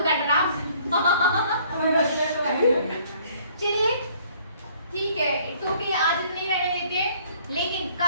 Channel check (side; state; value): both; inverted; correlation -0.59